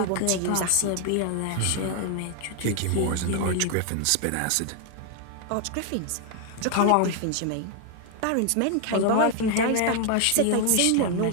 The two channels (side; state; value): both; different; correlation 0.00